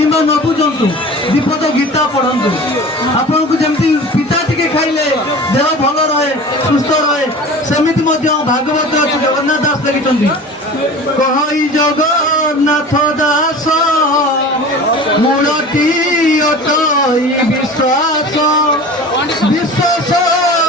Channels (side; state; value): both; normal; correlation 0.38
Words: ନ ବୁଝନ୍ତୁ ଦୀପଦ ଗୀତା ପଢ଼ନ୍ତୁ। ଆପଣଙ୍କୁ ଯେମିତି ପିତା ଟିକେ ଖାଇଲେ ଦେହ ଭଲ ରହେ, ସୁସ୍ଥ ରହେ, ସେମିତି ମଧ୍ୟ ଭାଗବତ ଅଛି। ଜଗନ୍ନାଥ ଦାସ ଲେଖିଛନ୍ତି, କହଇ ଜଗନ୍ନାଥ ଦାସ ମୂଳଟି ଅଟଇ ବିଶ୍ୱାସ, ବିଶ୍ୱାସ